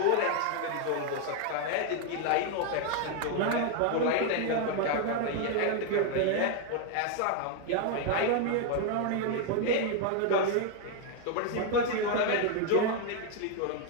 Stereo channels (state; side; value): different; both; correlation 0.01